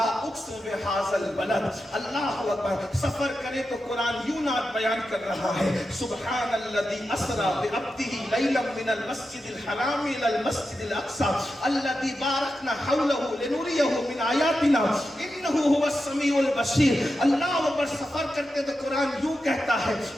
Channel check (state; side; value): normal; both; correlation 0.90